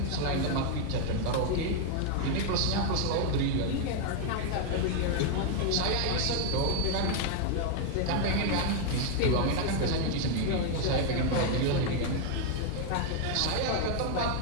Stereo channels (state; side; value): different; both; correlation 0.00